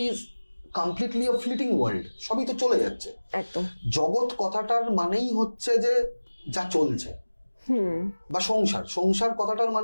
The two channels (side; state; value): both; inverted; correlation -1.00